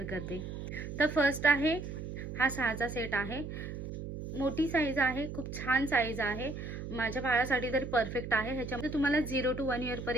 करते. तर फर्स्ट आहे हा 6चा सेट आहे. मोठी साईज आहे, खूप छान साईज आहे. माझ्या बाळासाठी तरी परफेक्ट आहे. ह्याच्यामध्ये तुम्हाला 0 to 1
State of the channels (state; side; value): noise; right; hum, 7 dB below the sound